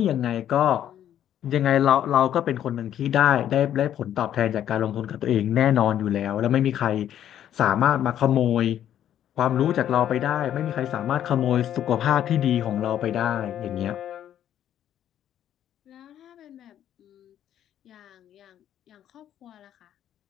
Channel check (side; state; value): right; quieter; 10.8 dB